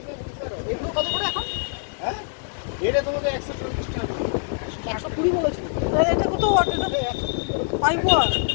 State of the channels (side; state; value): right; silent; 62 dB below the other